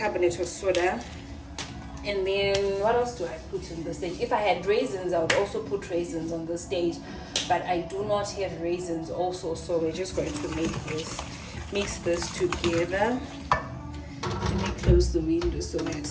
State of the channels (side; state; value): both; identical; correlation 1.00